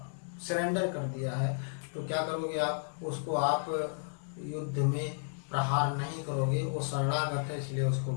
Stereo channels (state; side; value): silent; right; digital silence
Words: सरेंडर कर दिया है, तो क्या करोगे आप? उसको आप युद्ध में प्रहार नहीं करोगे। वो शरणागत है इसलिए